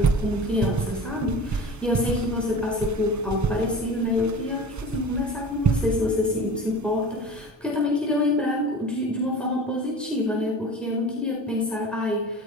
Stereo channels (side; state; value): both; normal; correlation 0.37